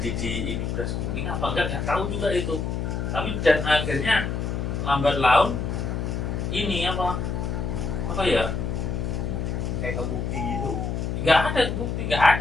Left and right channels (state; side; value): noise; left; hum, 2 dB below the sound